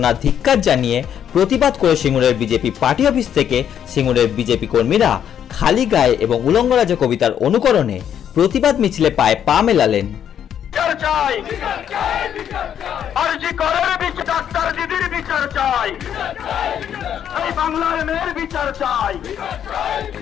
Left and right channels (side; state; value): right; quieter; 9.3 dB